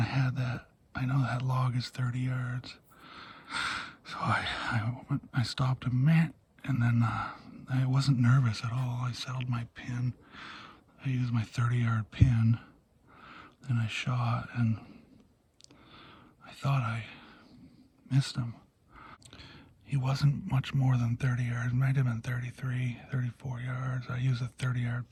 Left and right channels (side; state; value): both; identical; correlation 1.00